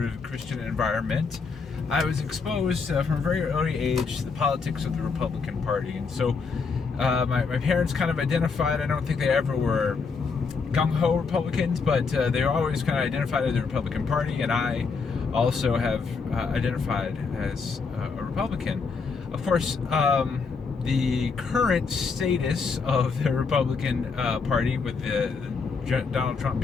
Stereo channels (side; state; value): right; quieter; 5.0 dB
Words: Christian environment, I was exposed from a very early age to the politics of the Republican Party. And so my parents kind of identified, I don't think they ever were gung-ho Republicans, but they were always kind of identified as the Republican Party, and I also have identified as a Republican. Of course, the current status of the Republican Party, with Donald Trump